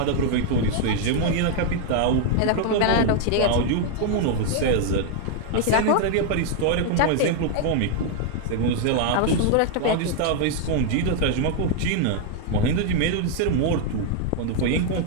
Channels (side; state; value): both; different; correlation 0.00